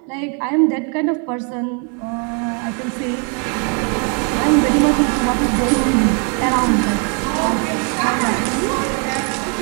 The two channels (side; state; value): left; quieter; 38.9 dB